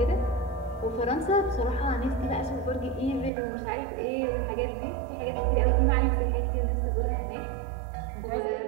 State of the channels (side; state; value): left; drops out; at 3.3 s